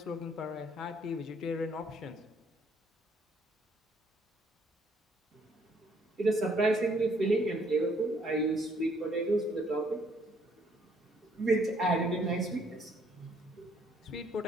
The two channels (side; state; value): both; normal; correlation 0.66